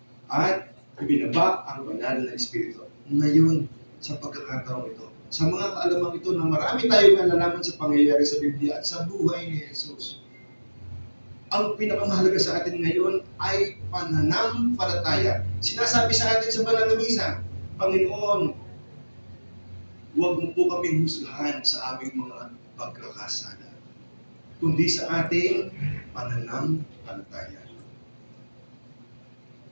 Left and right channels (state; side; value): inverted; both; correlation -1.00